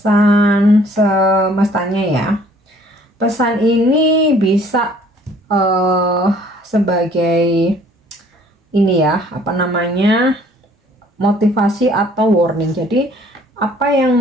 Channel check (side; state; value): both; normal; correlation 0.57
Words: semestanya ya. Pesan ini bisa sebagai ini ya, apa namanya, motivasi atau warning. Jadi apa yang